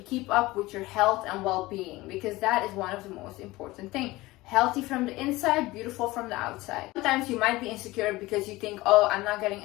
keep up with your health and well-being, because that is one of the most important things. Healthy from the inside, beautiful from the outside. Sometimes you might be insecure because you think, oh, I'm not getting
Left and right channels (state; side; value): quieter; right; 19.6 dB